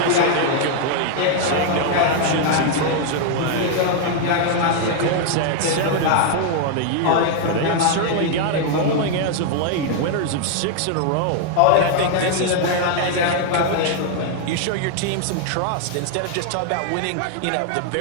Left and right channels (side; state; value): both; different; correlation 0.00